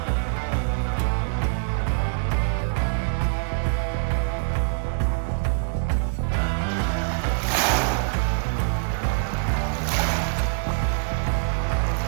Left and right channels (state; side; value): silent; left; 62 dB below the other